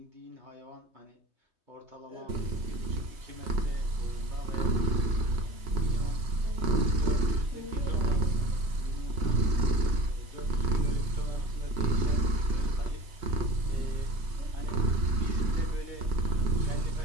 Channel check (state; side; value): late; left; 3.2 ms